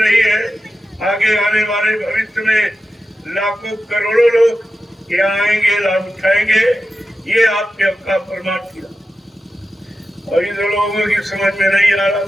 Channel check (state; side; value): normal; both; correlation 0.92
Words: रही है, आगे आने वाले भविष्य में लाखों करोड़ों लोग यहाँ आएंगे, लाभ उठाएंगे। ये आपके आपका परमार्थी लाभ। और इन लोगों की समझ में नहीं आ